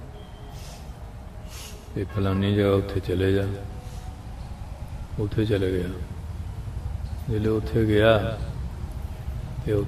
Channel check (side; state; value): both; identical; correlation 1.00